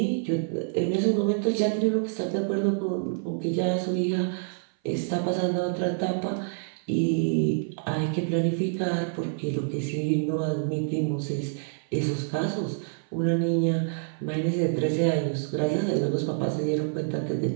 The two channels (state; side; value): silent; left; 57 dB below the other